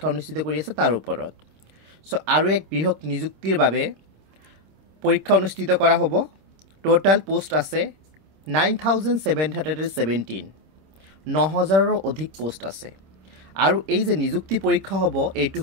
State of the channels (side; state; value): left; late; 26 ms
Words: অনুষ্ঠিত কৰি আছে তাৰ ওপৰত। সো আৰু এক বৃহৎ নিযুক্তিৰ বাবে পৰীক্ষা অনুষ্ঠিত কৰা হ'ব। টোটাল পোষ্ট আছে 9717, 9000ৰ অধিক পোষ্ট আছে। আৰু এই যে নিযুক্তি পৰীক্ষা হ'ব এইটো